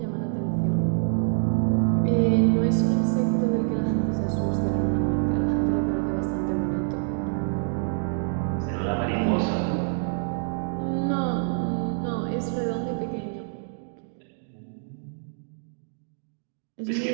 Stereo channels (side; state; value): left; silent; digital silence